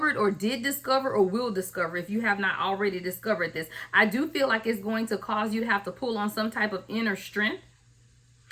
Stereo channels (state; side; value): identical; both; correlation 1.00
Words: or did discover or will discover if you have not already discovered this. I do feel like it's going to cause you to have to pull on some type of inner strength.